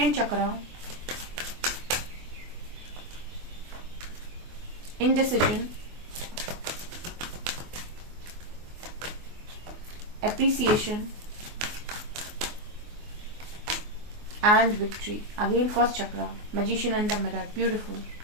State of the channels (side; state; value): left; late; 24 ms